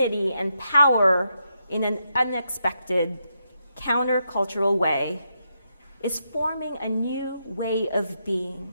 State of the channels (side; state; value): both; inverted; correlation -0.82